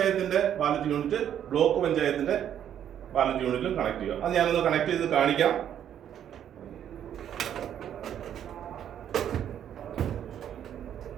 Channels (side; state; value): left; quieter; 9.9 dB